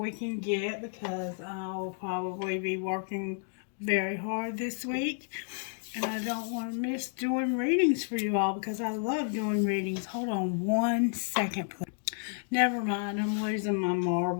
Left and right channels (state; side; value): silent; right; 57 dB below the other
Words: can get because I'll probably be working very hard this week. And I don't want to miss doing readings for you all because I love doing readings. Hold on 1 second, please. Never mind, I'm losing my